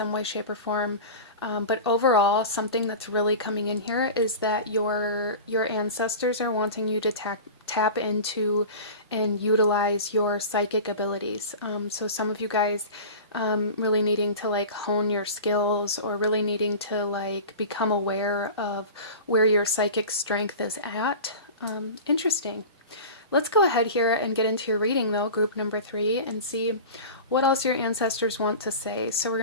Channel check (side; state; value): both; inverted; correlation -0.33